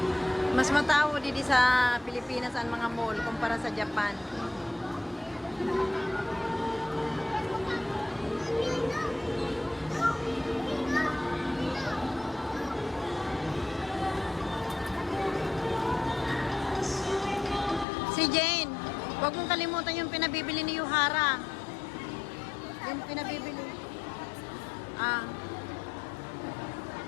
Mas matao dito sa Pilipinas ang mga mall kumpara sa Japan. Si Jane, huwag mong kalimutan yung pinabibili ni Yuhara. Yung pinabibili. Ah.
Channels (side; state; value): right; drops out; at 17.9 s